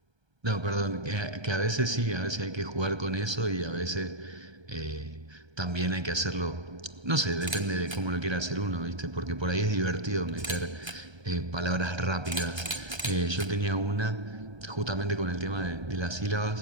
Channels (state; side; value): late; left; 1.3 ms